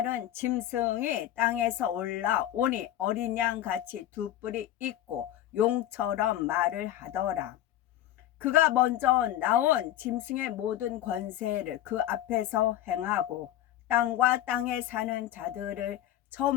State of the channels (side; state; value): right; quieter; 12.8 dB